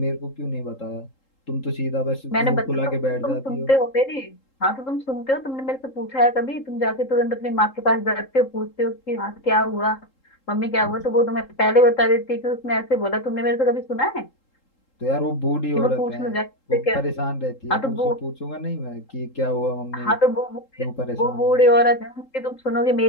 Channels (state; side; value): late; right; 3.8 ms